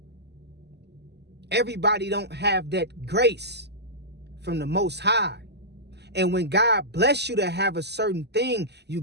Everybody don't have that grace from the Most High. And when God bless you to have a certain thing,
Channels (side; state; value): left; late; 0.49 ms